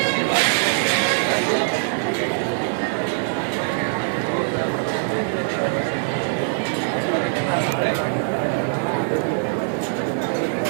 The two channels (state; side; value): silent; left; 64 dB below the other